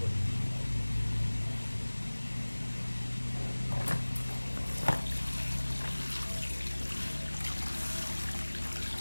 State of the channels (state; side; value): inverted; both; correlation -1.00